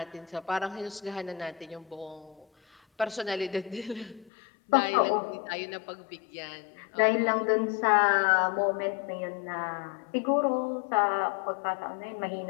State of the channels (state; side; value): drops out; right; at 4.3 s